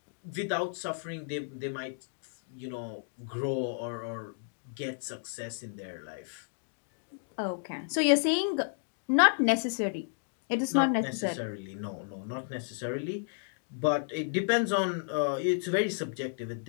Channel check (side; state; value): right; silent; digital silence